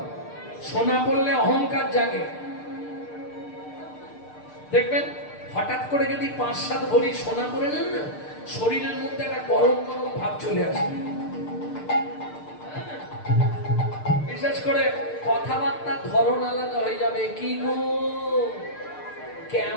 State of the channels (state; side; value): late; right; 6.7 ms